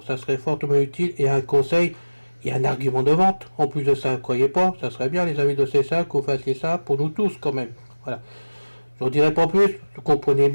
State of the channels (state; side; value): inverted; both; correlation -1.00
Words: Ça serait fortement utile et un conseil. Il y a un argument de vente. En plus de ça, croyez pas, ça serait bien les amis de CSA qu'on fasse ça pour nous tous quand même. Voilà. Je n'en dirai pas plus. Vous comprenez